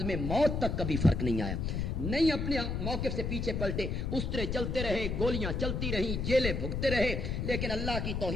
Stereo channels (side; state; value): left; noise; rumble, 1 dB below the sound